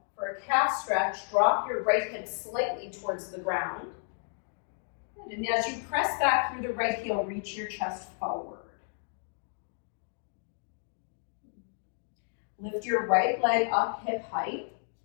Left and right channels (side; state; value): right; silent; 57 dB below the other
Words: for a calf stretch. Drop your right hip slightly towards the ground. Good. And as you press back through the right heel, reach your chest forward. Lift your right leg up hip height.